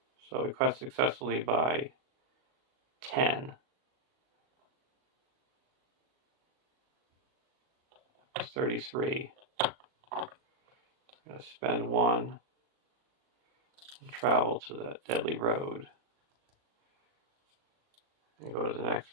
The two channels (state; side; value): late; left; 38 ms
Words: So we quest successfully by 10. That's 33. I'm going to spend 1 and travel to the Deadly Road and go to the next